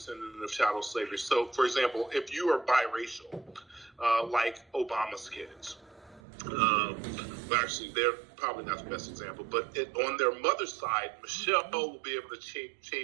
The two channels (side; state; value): left; drops out; at 6.2 s